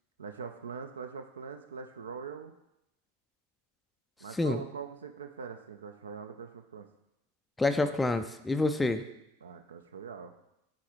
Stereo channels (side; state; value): both; normal; correlation 0.70